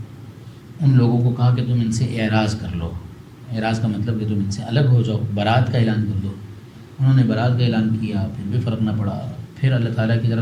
ان لوگوں کو کہا کہ تم ان سے اعراض کر لو. اعراض کا مطلب کہ تم ان سے الگ ہو جاؤ، برات کا اعلان کر دو. انہوں نے برات کا اعلان کیا، پھر بھی فرق نہ پڑا. پھر اللہ تعالیٰ کی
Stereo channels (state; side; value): identical; both; correlation 1.00